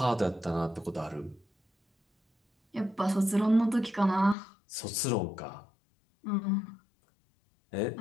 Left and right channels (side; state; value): right; drops out; at 4.4 s